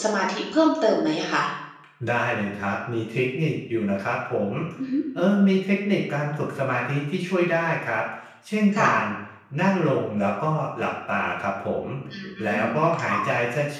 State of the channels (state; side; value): identical; both; correlation 1.00